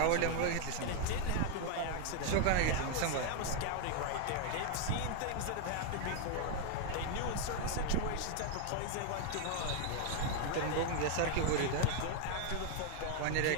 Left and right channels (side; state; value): both; different; correlation 0.01